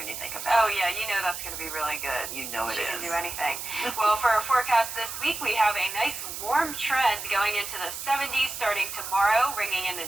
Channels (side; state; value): right; noise; hiss, 7 dB below the sound